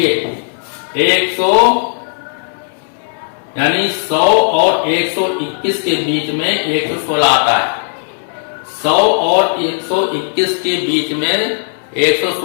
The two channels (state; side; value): silent; right; digital silence